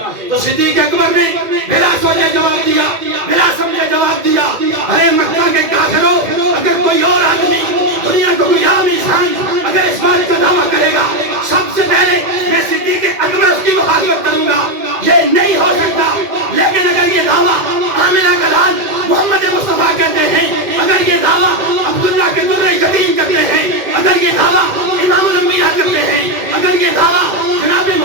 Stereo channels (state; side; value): late; left; 2.1 ms